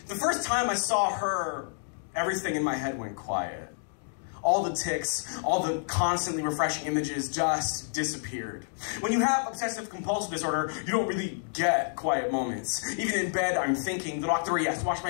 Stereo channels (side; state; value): right; silent; digital silence